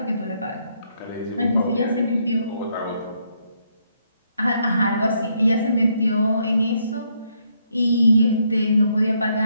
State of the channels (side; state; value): both; inverted; correlation -0.74